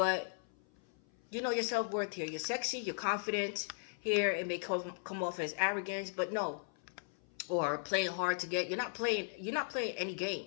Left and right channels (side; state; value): right; silent; 53 dB below the other